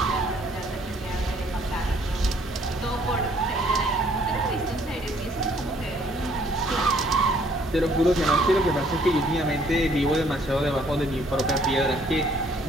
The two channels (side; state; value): both; normal; correlation 0.63